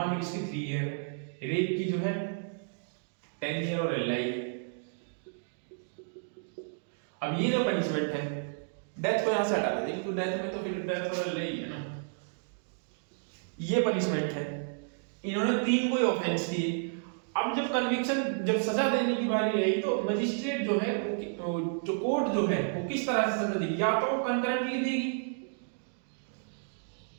लो इसकी 3 ईयर, रेप की जो है 10 ईयर और लाइफ। अब ये जो पनिशमेंट है, डेथ को यहां से हटा देंगे, तो डेथ में तो फिर डेथ और लाइफ है ना, ये पनिशमेंट है। इन्होंने 3 कोई ऑफेंस किए। अब जब कन्विक्शन, जब सजा देने की बारी आई तो मजिस्ट्रेट जो है, जो कोर्ट जो है वो किस तरह से सजा देगी, या तो कंकरेंटली देगी,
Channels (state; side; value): silent; left; digital silence